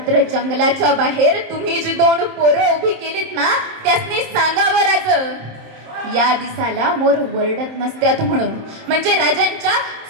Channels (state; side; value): late; left; 27 ms